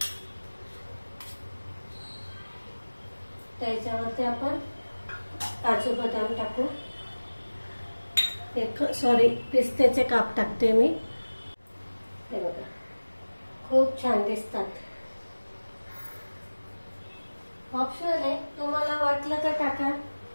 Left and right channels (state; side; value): inverted; both; correlation -1.00